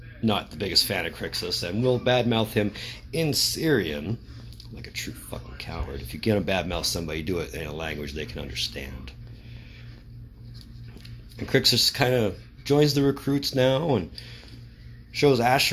not the biggest fan of Crixus and will badmouth him in Syrian, like a true fucking coward. If you're gonna badmouth somebody, do it in a language they can understand. And Crixus kind of joins the recruits now and shows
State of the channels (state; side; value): identical; both; correlation 1.00